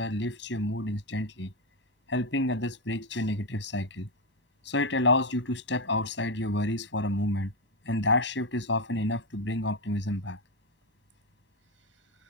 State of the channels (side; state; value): both; normal; correlation 0.07